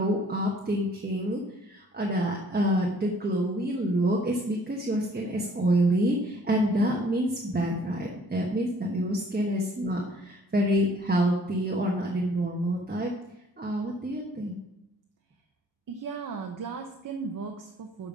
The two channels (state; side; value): normal; both; correlation 0.58